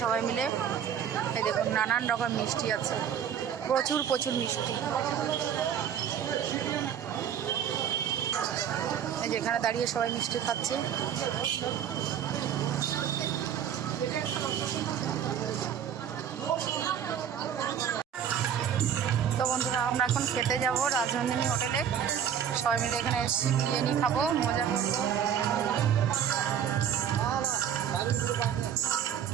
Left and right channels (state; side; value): quieter; left; 8.8 dB